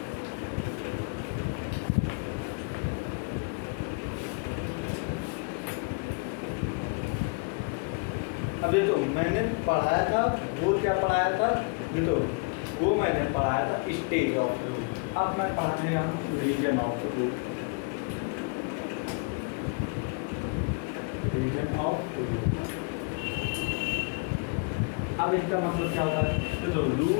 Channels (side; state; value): right; quieter; 32.3 dB